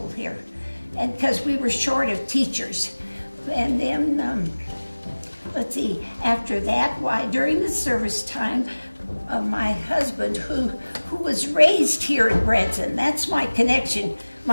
here, and because we were short of teachers. And then let's see, after that, why, during the service time, my husband, who was raised here in Branson, that's my connection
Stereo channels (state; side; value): inverted; both; correlation -1.00